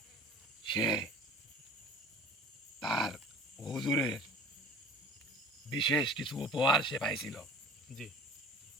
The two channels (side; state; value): both; normal; correlation 0.44